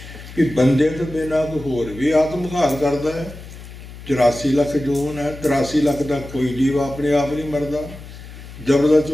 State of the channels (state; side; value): noise; left; hum, 15 dB below the sound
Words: कि बंदे तो बिना कोई होर भी आत्मघात करता है। 84 लाख जून है, 83 लाख का कोई जीव अपने आप नहीं मरदा। जबरदस्त